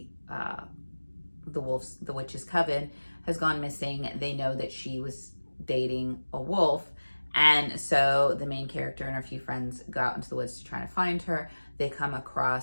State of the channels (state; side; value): inverted; both; correlation -1.00